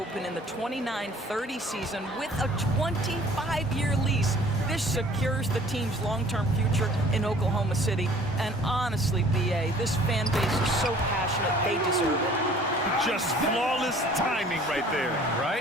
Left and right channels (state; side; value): normal; both; correlation 0.51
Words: in the 29-30 season with a 25-year lease. This secures the team's long-term future in Oklahoma City. And honestly, B.A., this fan base is so passionate, they deserve it. Just flawless timing right there.